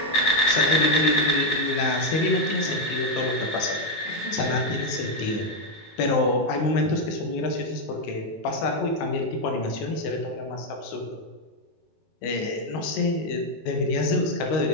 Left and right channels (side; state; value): right; late; 19 ms